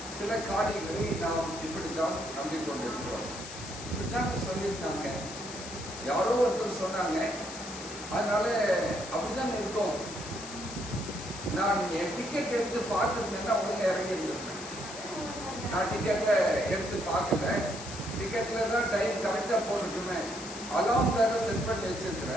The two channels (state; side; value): noise; left; hiss, 11 dB below the sound